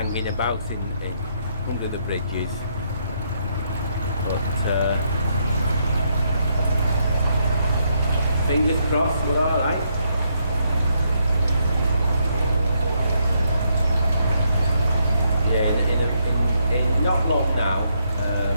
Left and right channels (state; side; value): inverted; both; correlation -0.75